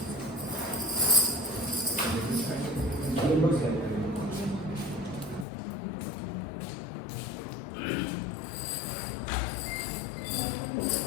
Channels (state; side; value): drops out; right; at 5.5 s